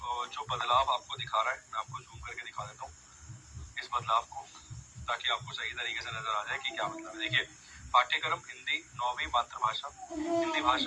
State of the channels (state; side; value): identical; both; correlation 1.00